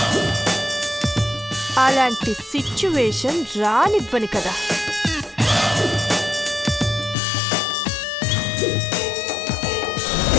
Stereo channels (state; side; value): drops out; right; at 7.2 s